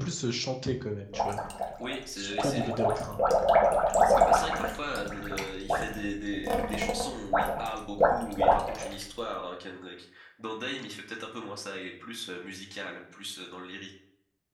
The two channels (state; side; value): identical; both; correlation 1.00